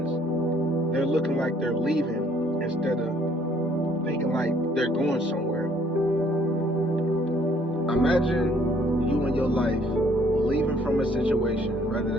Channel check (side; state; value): both; normal; correlation 0.62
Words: they're looking like they're leaving instead of thinking like they're going somewhere. Imagine you in your life leaving from a situation, whether